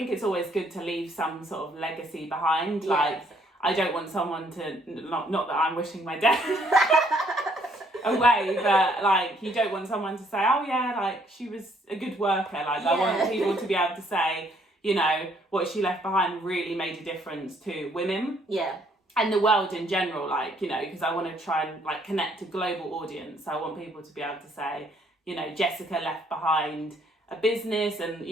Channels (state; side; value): normal; both; correlation 0.67